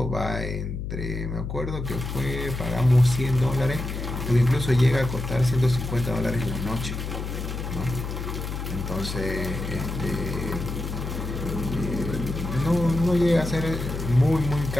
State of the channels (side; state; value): left; noise; hum, 5 dB below the sound